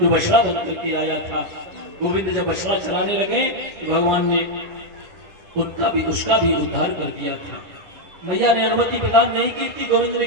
जो बछड़ा बन करके आया था। गोविंद जब बछड़ा चलाने लगे तो भगवान ने उसका भी उद्धार कर दिया था। मैया ने अनुमति प्रदान नहीं की थी। गोविंद ने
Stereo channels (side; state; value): left; late; 9.8 ms